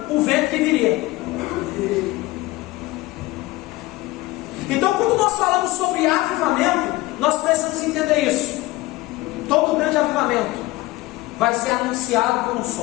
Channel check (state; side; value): quieter; right; 19.4 dB